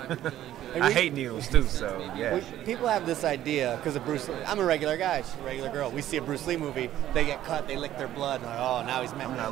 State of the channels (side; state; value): left; quieter; 12.7 dB